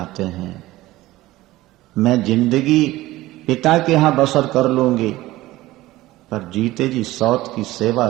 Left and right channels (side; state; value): left; quieter; 17.4 dB